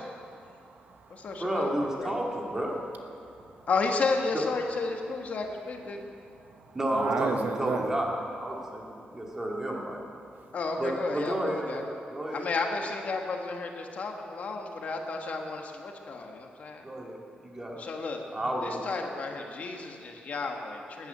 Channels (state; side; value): normal; both; correlation 0.81